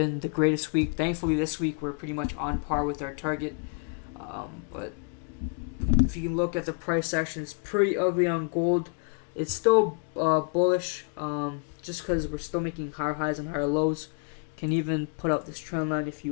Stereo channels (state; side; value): quieter; right; 36.9 dB